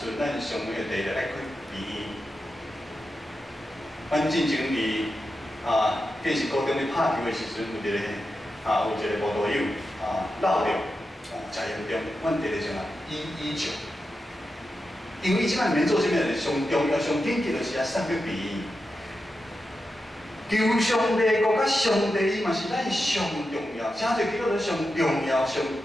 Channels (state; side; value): normal; both; correlation 0.89